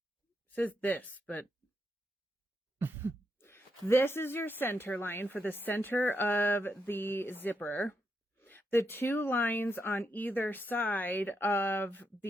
it says this, but this is your center line for the center of the zipper. The two lines on either side of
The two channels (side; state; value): both; normal; correlation 0.82